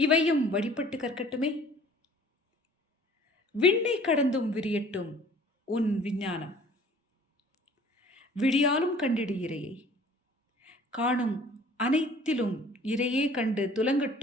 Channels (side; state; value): both; normal; correlation 0.52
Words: வழிபட்டு கற்கட்டுமே. விண்ணை கடந்தும் விரியட்டும் உன் விஞ்ஞானம். விடியாலும் கண்டிடு இறையை, காணும் அனைத்திலும் இறையே கண்டு